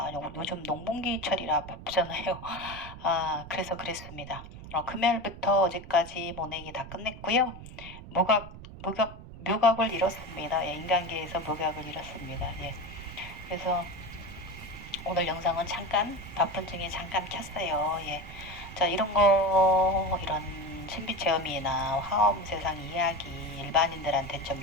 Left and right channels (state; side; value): noise; right; rumble, 14 dB below the sound